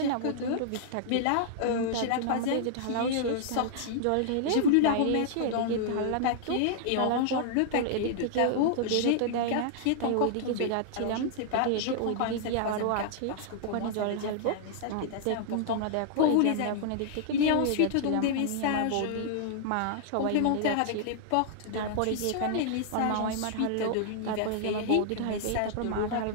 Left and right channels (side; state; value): both; different; correlation -0.01